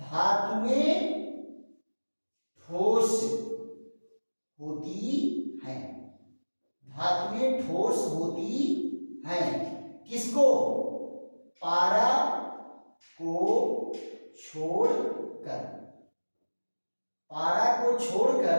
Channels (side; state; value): both; inverted; correlation -1.00